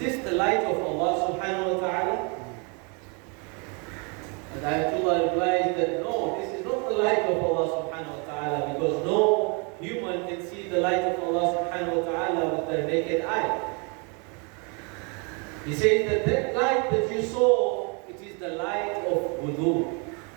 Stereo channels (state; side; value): quieter; left; 33.9 dB